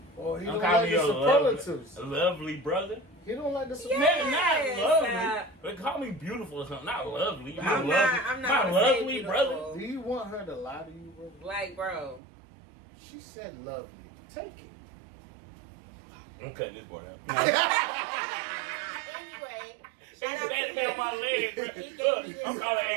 Oh, he Don't don't call like me the a superlatives. lovely brother. He don't like the Yeah. superlatives. Not lovely. But call me beautiful or something. Not lovely. I'm not my gonna say lovely beautiful. brother. Do you want her to lie to you, bro? Like, bro. She said lovely. Take it. I'm cutting this part out. Anyway, shout out That to on my leg, bro. He gave Look, me this I'm calling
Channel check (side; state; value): left; drops out; at 12.2 s